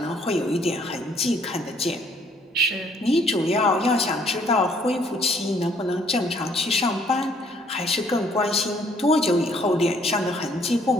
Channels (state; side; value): normal; both; correlation 0.63